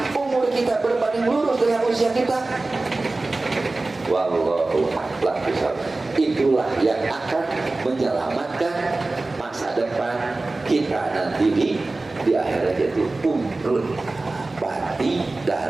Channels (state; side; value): quieter; left; 3.2 dB